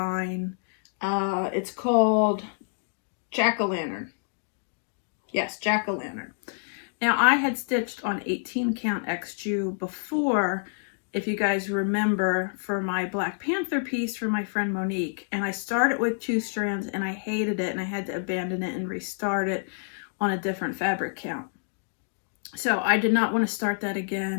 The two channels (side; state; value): right; silent; digital silence